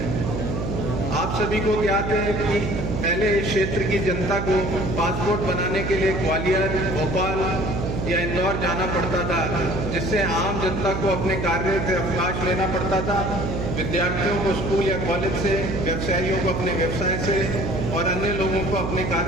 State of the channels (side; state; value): right; noise; hum, 3 dB below the sound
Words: आप सभी को ज्ञात है कि पहले इस क्षेत्र की जनता को पासपोर्ट बनाने के लिए ग्वालियर, भोपाल या इंदौर जाना पड़ता था, जिससे आम जनता को अपने कार्य से अवकाश लेना पड़ता था। विद्यार्थियों को स्कूल या कॉलेज से, व्यवसायियों को अपने व्यवसाय से और अन्य लोगों को अपने